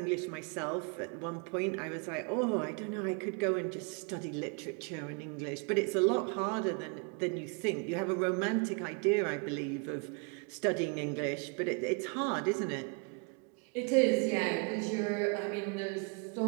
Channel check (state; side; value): quieter; left; 34.3 dB